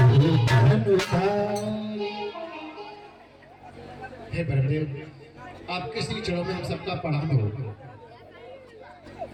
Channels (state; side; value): identical; both; correlation 1.00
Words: हे ब्रह्मदेव, आपके श्री चरणों में हम सबका प्रणाम हो।